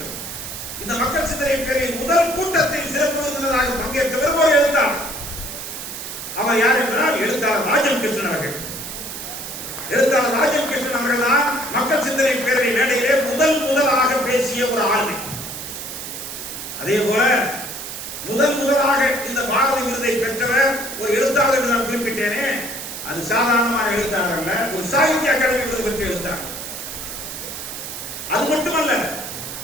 இந்த மக்கள் சிந்தனை பேரில் முதல் கூட்டத்தில் சிறப்பு விருந்தினராக பங்கேற்றவர் ஒரு எழுத்தாளர். அவர் யார் என்றால் எழுத்தாளர் ராஜம் கிருஷ்ணன் அவர்கள். எழுத்தாளர் ராஜம் கிருஷ்ணன் அவர்கள் தான் மக்கள் சிந்தனை பேரவை மேடையிலே முதலாக பேசிய ஒரு ஆளுமை. அதே போல முதலாக இந்த பாரதி விருதை பெற்றவர் ஒரு எழுத்தாளர் என்று நான் குறிப்பிட்டேனே, அது சாதாரணமான எழுத்தாளர் அல்ல, ஒரு சாகித்ய அகாடமி விருது பெற்ற எழுத்தாளர். அது மட்டுமல்ல,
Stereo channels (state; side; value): noise; right; hiss, 8 dB below the sound